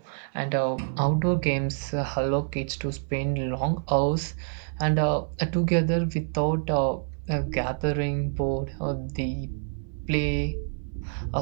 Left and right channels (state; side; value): silent; left; 60 dB below the other